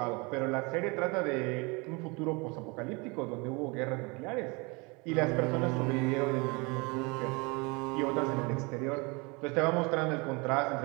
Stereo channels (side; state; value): left; quieter; 28.4 dB